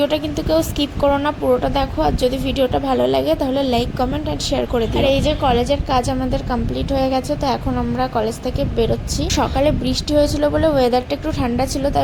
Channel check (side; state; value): both; identical; correlation 1.00